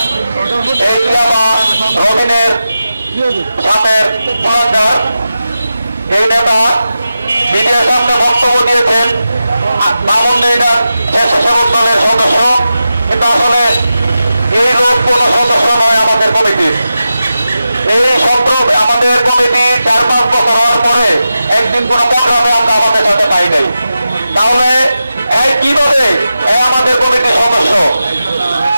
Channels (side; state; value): both; inverted; correlation -0.91